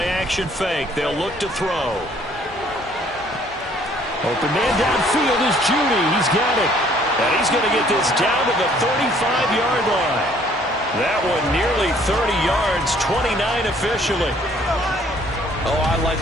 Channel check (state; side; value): normal; both; correlation 0.60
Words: fake. They'll look to throw. Open man downfield is Judy. He's got it. And he's going to get this down to the 35-yard line. That one nearly 30 yards, 29 officially. Oh, I like